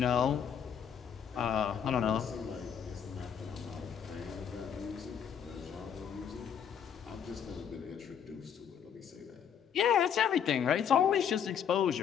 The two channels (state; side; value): quieter; right; 8.2 dB